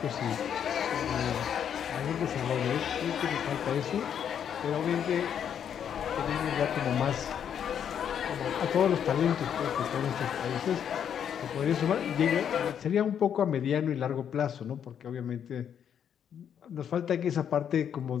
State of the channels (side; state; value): right; quieter; 8.6 dB